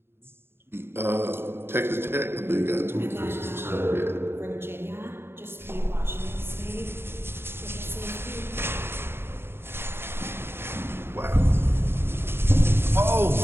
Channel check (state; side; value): late; left; 0.11 ms